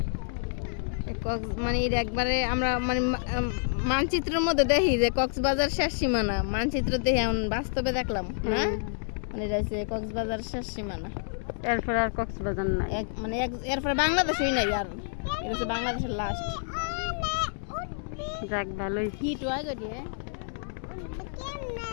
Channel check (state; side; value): silent; right; digital silence